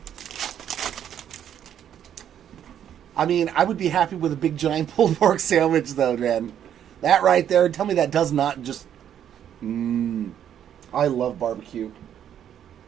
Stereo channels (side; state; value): left; quieter; 9.8 dB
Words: I mean, I would be happy with a big giant pulled pork sandwich, though, man. That right there, tell me that does not just... I love barbecue.